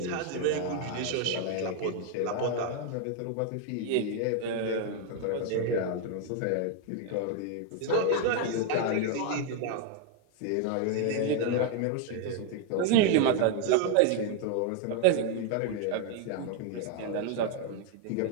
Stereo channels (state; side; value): different; both; correlation 0.01